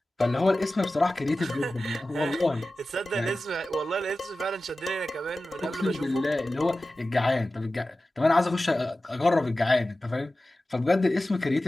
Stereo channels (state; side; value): normal; both; correlation 0.95